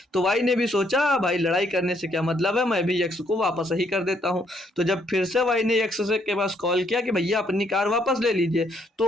तो वाई ने भी सोचा भाई लड़ाई करने से क्या मतलब है, मैं भी एक्स को वापस ही कर देता हूँ। तो जब फिर से वाई ने एक्स से के पास कॉल किया कि भैया अपनी कार वापस ले लीजिए,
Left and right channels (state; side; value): normal; both; correlation 0.71